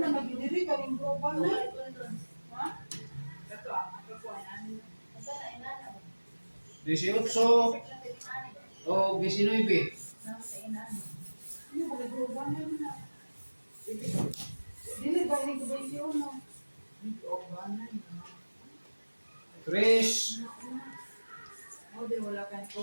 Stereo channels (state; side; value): inverted; both; correlation -1.00